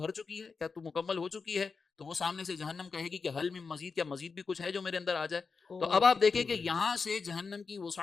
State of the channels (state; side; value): quieter; right; 4.9 dB